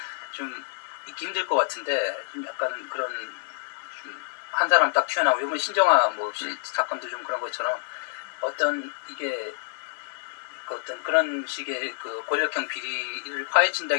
좀 있기 힘들 것 같은데 좀 약간 그런 좀 한 사람 딱 튀어나오고 이번 신정아 뭐 사건도 좀 그런 것처럼 어떤 이게 어떤 그런 식의 그 권력형 비리를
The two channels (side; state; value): right; silent; digital silence